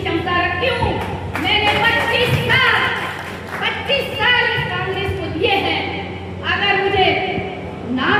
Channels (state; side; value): identical; both; correlation 1.00